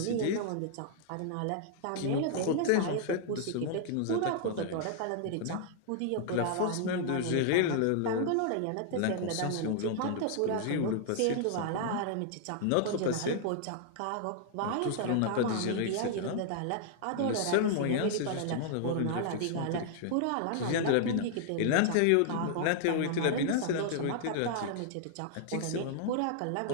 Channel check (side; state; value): both; different; correlation -0.01